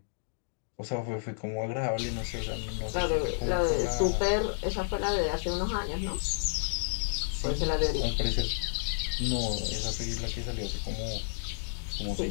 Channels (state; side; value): silent; right; digital silence